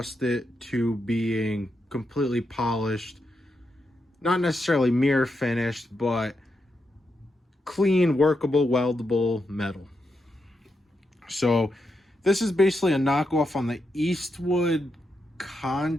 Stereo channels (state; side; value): normal; both; correlation 0.84